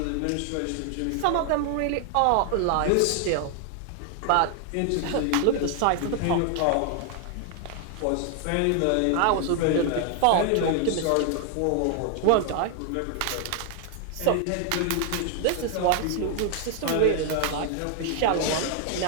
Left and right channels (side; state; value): both; different; correlation 0.00